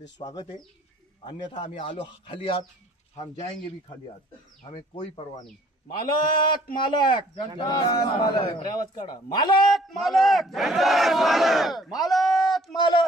स्वागत आहे. अन्यथा आम्ही आलो खाली हात, हम जाएंगे भी खाली हात, हमें कोई परवाह नहीं. मालक मालक मालक आवाज काढा. मालक मालक मालक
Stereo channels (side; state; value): both; normal; correlation 0.58